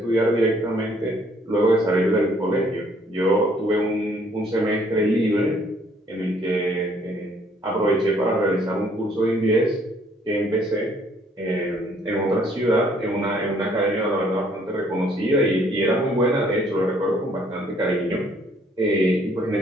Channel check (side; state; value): both; normal; correlation 0.63